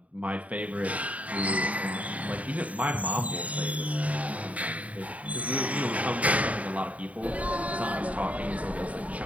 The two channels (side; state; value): left; late; 0.068 ms